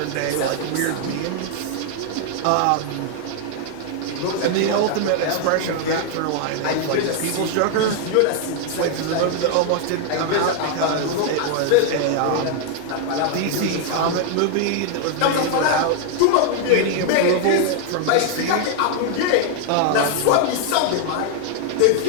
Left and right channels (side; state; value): both; different; correlation 0.00